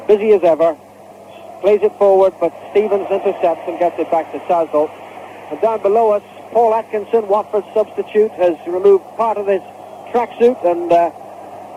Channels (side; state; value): both; identical; correlation 1.00